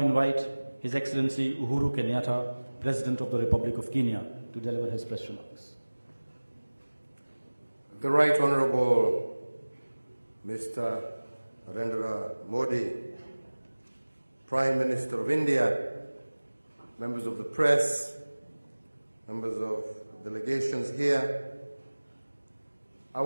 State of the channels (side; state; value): both; inverted; correlation -1.00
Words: His Excellency Uhuru Kenyatta, President of the Republic of Kenya, to deliver his press remarks. The Right Honorable Mr. Narendra Modi, Prime Minister of India, members of the press, members of delegations here, I